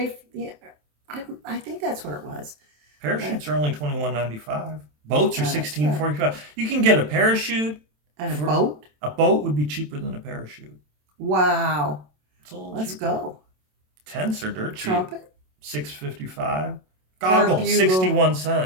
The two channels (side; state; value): left; late; 27 ms